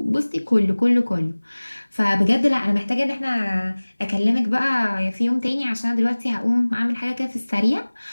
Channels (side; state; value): both; inverted; correlation -1.00